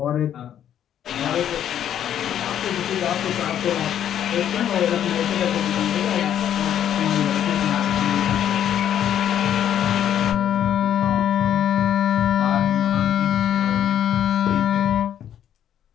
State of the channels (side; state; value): right; quieter; 10.1 dB